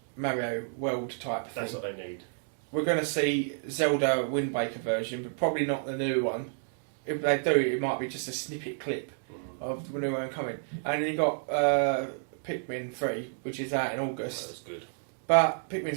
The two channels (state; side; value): silent; left; digital silence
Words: Mario World type thing. That's what they need. We're going to see Zelda Wind Waker version, but probably not the new one. If they do, it might be just a snippet clip of the new one coming. And then you got Pikmin 3, which is out in August. That's good. But